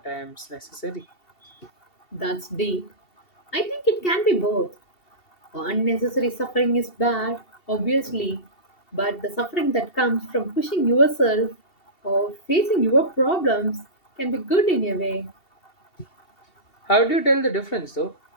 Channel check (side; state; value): right; late; 2.7 ms